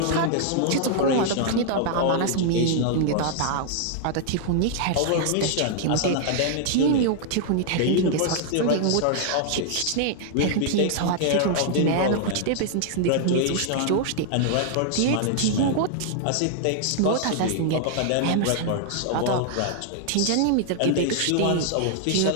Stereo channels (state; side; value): different; both; correlation -0.01